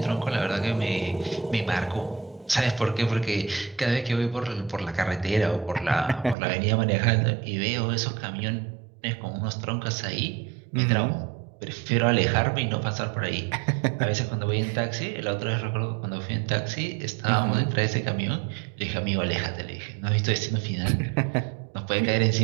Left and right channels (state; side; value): drops out; left; at 6.4 s